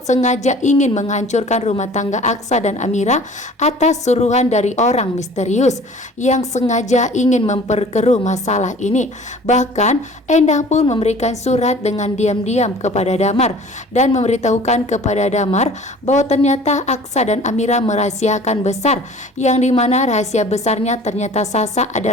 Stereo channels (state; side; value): normal; both; correlation 0.47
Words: sengaja ingin menghancurkan rumah tangga Aksa dan Amira atas suruhan dari orang misterius yang sengaja ingin memperkeruh masalah ini. Bahkan Endah pun memberikan surat dengan diam-diam kepada Damar dan memberitahukan kepada Damar bahwa ternyata Aksa dan Amira merahasiakan besar, yang dimana rahasia besarnya ternyata Sasa